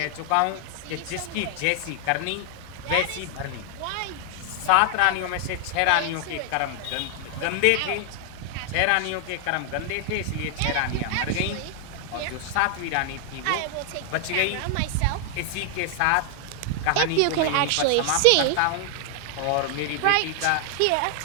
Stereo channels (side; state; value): both; different; correlation 0.00